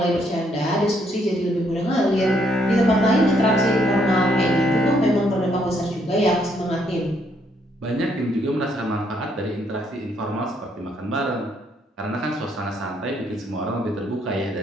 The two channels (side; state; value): both; normal; correlation 0.71